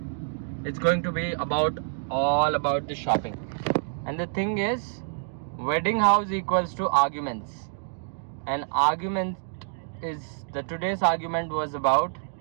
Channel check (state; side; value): silent; left; digital silence